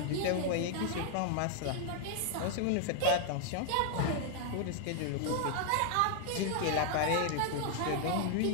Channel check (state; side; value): different; both; correlation 0.00